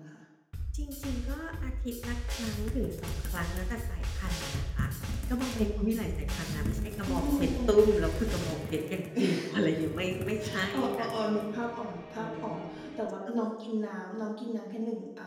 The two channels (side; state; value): both; identical; correlation 1.00